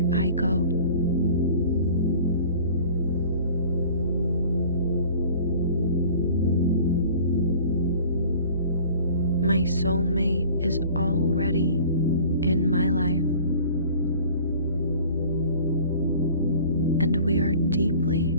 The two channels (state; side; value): inverted; both; correlation -0.46